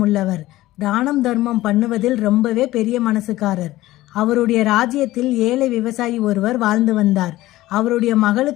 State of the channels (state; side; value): quieter; right; 16.6 dB